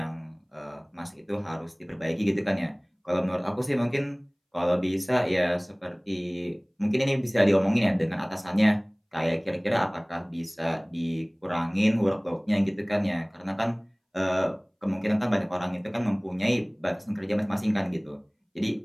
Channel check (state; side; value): identical; both; correlation 1.00